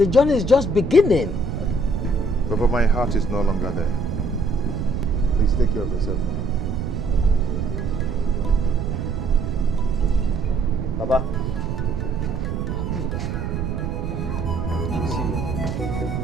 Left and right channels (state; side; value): noise; right; rumble, 3 dB below the sound